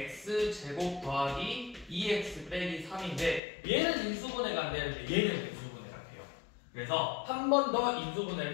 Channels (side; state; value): right; drops out; at 3.4 s